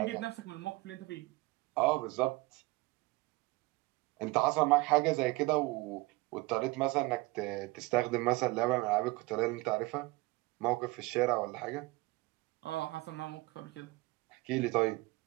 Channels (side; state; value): left; quieter; 22.3 dB